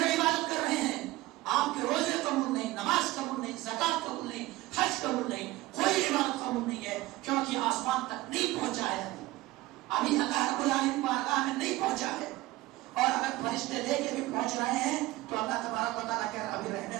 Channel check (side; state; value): left; quieter; 18.6 dB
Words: عبادت کر رہے ہیں, آپ کے روزے قبول نہیں, نماز قبول نہیں, زکات قبول نہیں, حج قبول نہیں, کوئی عبادت قبول نہیں ہے, کیونکہ آسمان تک نہیں پہنچا ہے, ابھی اللہ رب العالمین بارگاہ میں نہیں پہنچا ہے. اور اگر فرشتے لے کے بھی پہنچ رہے ہیں تو اللہ تبارک و تعالیٰ کہہ رہا ابھی رہنے